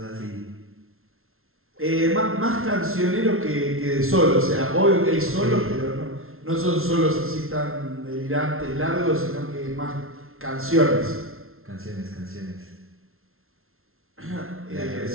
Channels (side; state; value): left; late; 0.62 ms